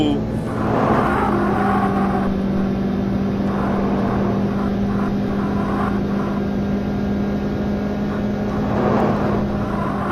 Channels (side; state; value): both; identical; correlation 1.00